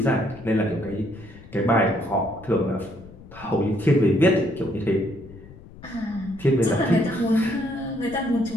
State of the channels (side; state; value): left; noise; rumble, 19 dB below the sound